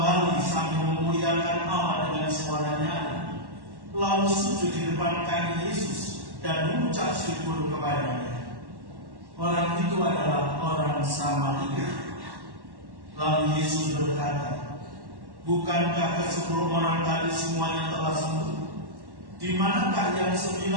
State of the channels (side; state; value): left; late; 1.1 ms